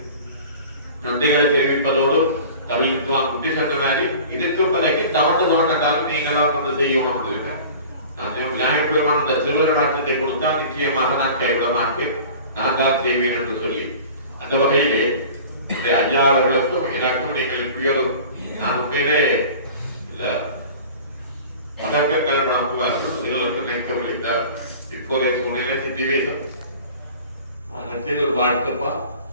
நன்றிகளை தெரிவிப்பதோடு கவி வித்வான் குட்டி சொன்ன மாதிரி இதுக்கு பிறகு தவண்டாலும் நீங்களாம் வந்து செய்யணும். நான் விநாயகர் பெருமான் அந்த திருவருளாற்றத்தை கொடுத்தால் நிச்சயமாக நான் கைவிட மாட்டேன், நான் தான் செய்வேன் என்று சொல்லி அந்த வகையிலே ஐயா அவர்களுக்கும் எனக்கும் நீங்கள் இப்படியோடு நான் உண்மையிலே அதற்கு கல்பனாக்குவார்கள் நீங்களுக்கும் நினைக்க முடிந்தார். இப்போதைய சூழ்நிலை சித்திவேசம் ஒரு வாழ்த்துப்பா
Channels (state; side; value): inverted; both; correlation -0.42